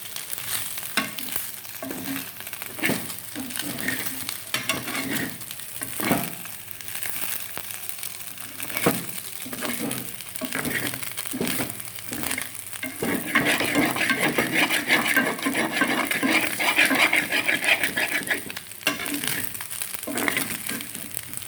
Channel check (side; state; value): both; identical; correlation 1.00